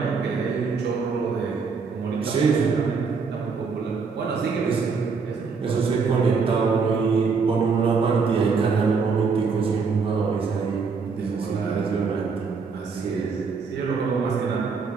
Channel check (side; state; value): left; quieter; 5.1 dB